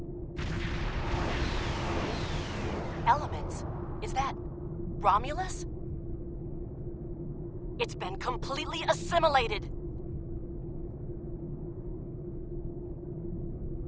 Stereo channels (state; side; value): identical; both; correlation 1.00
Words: Elements? Is that Romulus? It's been completely assimilated.